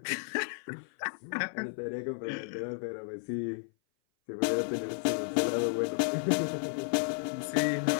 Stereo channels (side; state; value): right; silent; 56 dB below the other